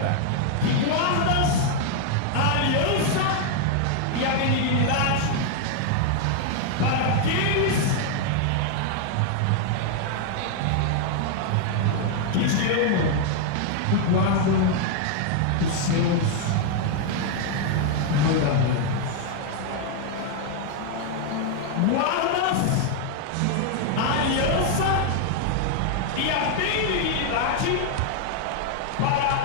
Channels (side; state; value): both; different; correlation 0.00